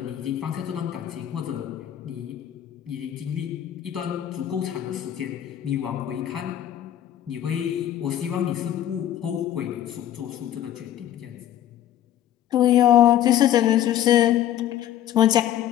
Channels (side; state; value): right; quieter; 11.6 dB